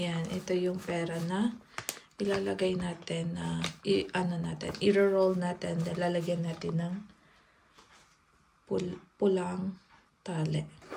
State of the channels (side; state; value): both; identical; correlation 1.00